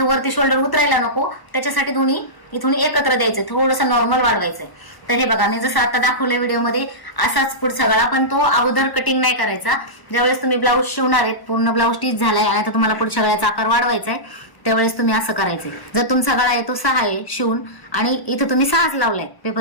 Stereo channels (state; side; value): late; right; 1.0 ms